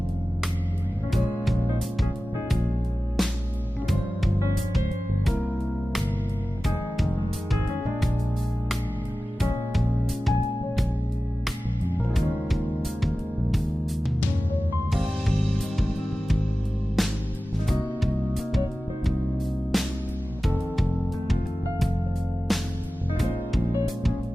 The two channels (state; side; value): normal; both; correlation 0.96